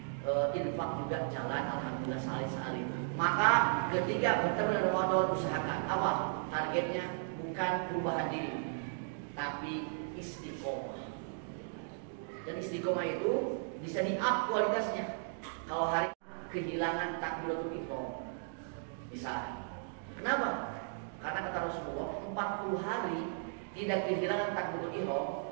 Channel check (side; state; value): left; silent; digital silence